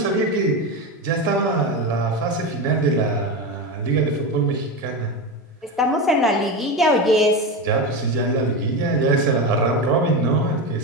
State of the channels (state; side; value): normal; both; correlation 0.19